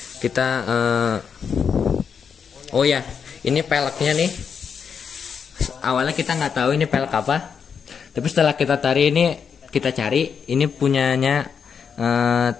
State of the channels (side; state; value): right; quieter; 6.7 dB